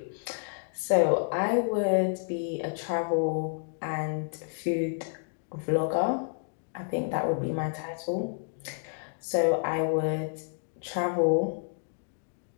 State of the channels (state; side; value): silent; right; digital silence